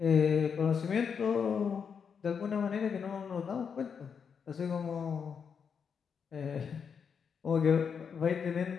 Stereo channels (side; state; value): right; quieter; 6.6 dB